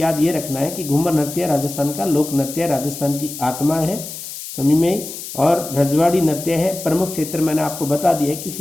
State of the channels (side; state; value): left; noise; hiss, 10 dB below the sound